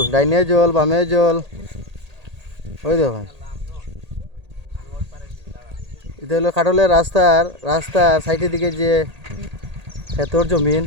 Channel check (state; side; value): late; left; 1.8 ms